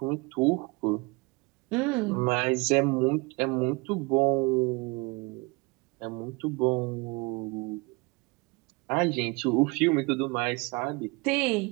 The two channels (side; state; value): left; quieter; 27.0 dB